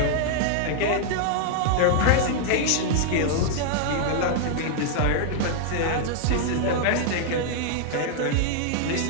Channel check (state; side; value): different; both; correlation -0.01